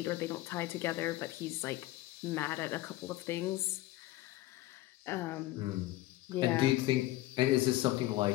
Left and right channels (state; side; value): quieter; right; 16.9 dB